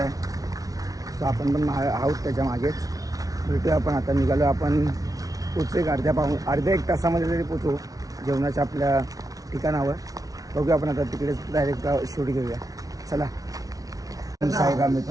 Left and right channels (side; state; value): left; late; 0.18 ms